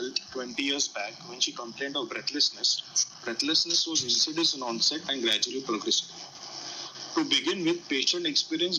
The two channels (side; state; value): both; identical; correlation 1.00